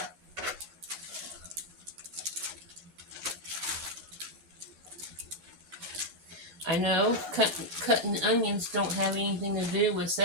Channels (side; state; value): left; late; 11 ms